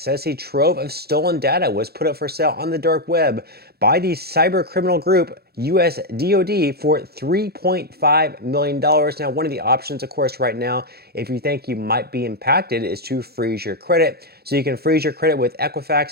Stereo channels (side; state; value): left; late; 0.46 ms